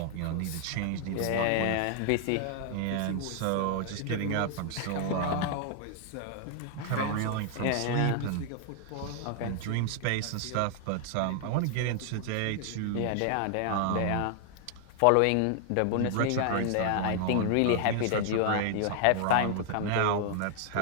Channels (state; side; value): different; both; correlation 0.00